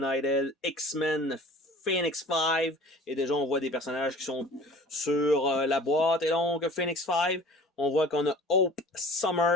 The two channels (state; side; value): normal; both; correlation 0.46